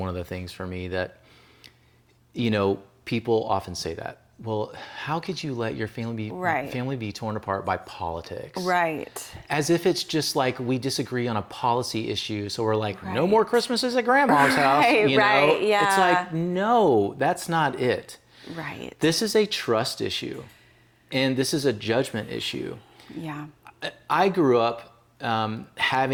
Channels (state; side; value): identical; both; correlation 1.00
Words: of the things for me that, you know, people often say that. Well, how could you let your family be torn apart by politics? Right. As if it's just like we disagree on a policy issue, so we're like, no more Christmases at grandma's house. You know? Yeah. It's like, no, that's not it. Right. This is a trust issue, and this is a judgment issue. Yeah. I grew up